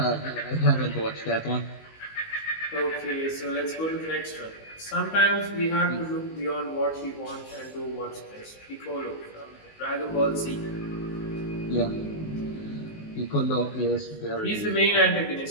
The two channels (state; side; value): late; right; 19 ms